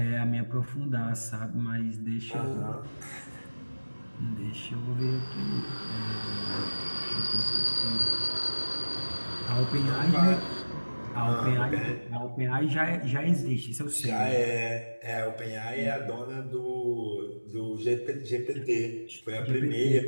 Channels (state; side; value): inverted; both; correlation -1.00